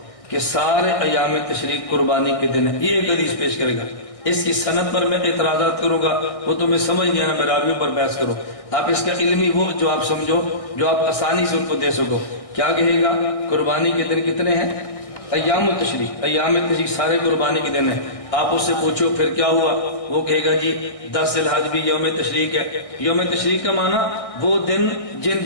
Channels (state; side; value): late; right; 1.6 ms